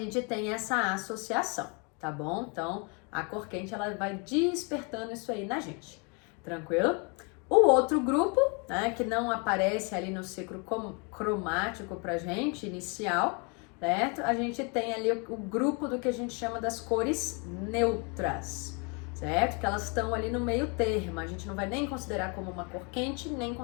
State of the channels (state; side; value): quieter; right; 33.4 dB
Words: tem essa associação, tá bom? Então, a cor quente, ela vai despertando isso aí na gente, tranquilo? O outro grupo, né, que não aparece ali no ciclo cromático pra gente, inicial, certo? A gente tem ali o grupo do que a gente chama das cores neutras, certo? Que elas estão ali no meio termo, a gente não vai nem considerar como uma cor quente, nem